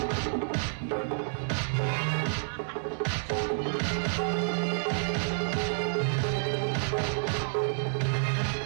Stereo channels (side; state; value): left; silent; 58 dB below the other